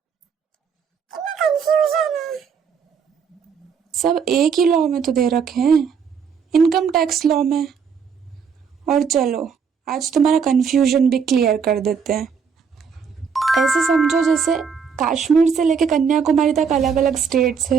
कितना कंफ्यूजन है। सब एक ही लॉ में तो दे रखे हैं, इनकम टैक्स लॉ में। और चलो आज तुम्हारा कंफ्यूजन भी क्लियर कर देते हैं। ऐसे समझो जैसे कश्मीर से लेके कन्याकुमारी तक अलग अलग स्टेट्स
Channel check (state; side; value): quieter; left; 6.4 dB